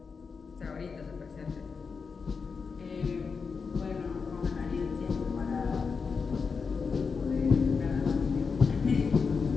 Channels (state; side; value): quieter; right; 5.3 dB